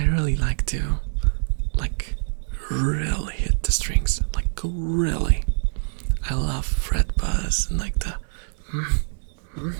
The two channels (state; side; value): silent; left; 62 dB below the other